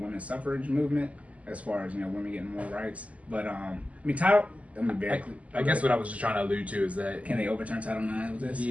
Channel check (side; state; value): left; late; 0.069 ms